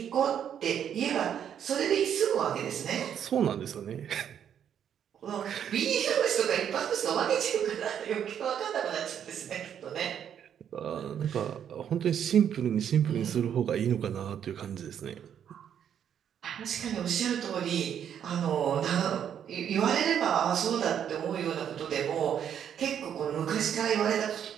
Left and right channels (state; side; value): quieter; left; 9.0 dB